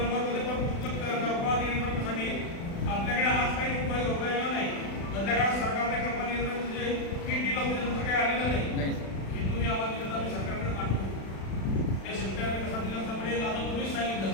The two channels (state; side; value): late; right; 36 ms